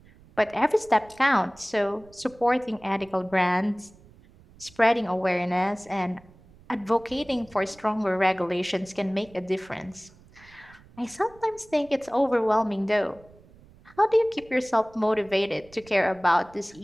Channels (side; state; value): right; noise; rumble, 25 dB below the sound